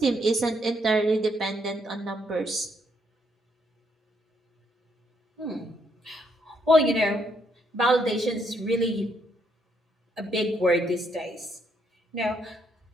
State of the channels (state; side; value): normal; both; correlation 0.74